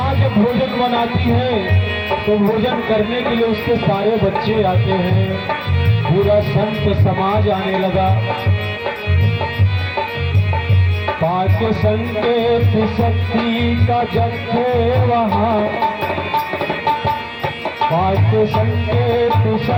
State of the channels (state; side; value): identical; both; correlation 1.00